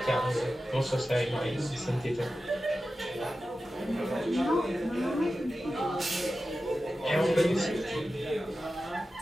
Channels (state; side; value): normal; both; correlation 0.93